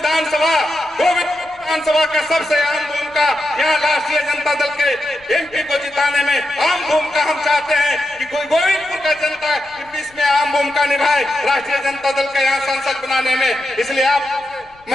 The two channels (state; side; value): noise; left; rumble, 29 dB below the sound